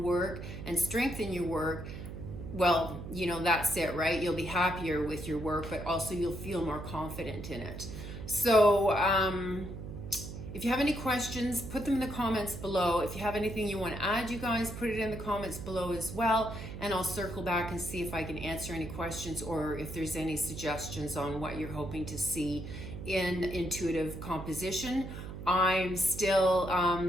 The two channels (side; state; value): right; noise; hum, 9 dB below the sound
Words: work and strengthen your work, well, you know, that's it, right? You'll be happier with your work, but also you'll feel more confident in it. So if you have any questions, put them in the comments below. If you have anything you want to add, you guys, put it in the comments below as well, and I'll circle back and see if I can answer any questions, or if there's any suggestions on what you're hoping to see in intuitive composition. I'm still